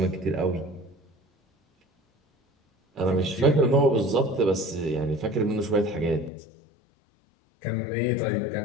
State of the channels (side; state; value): right; drops out; at 6.3 s